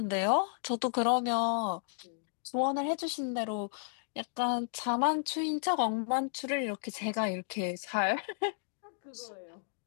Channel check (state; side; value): silent; right; digital silence